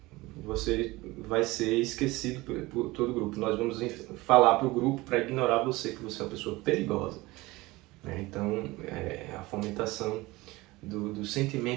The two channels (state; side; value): quieter; left; 20.8 dB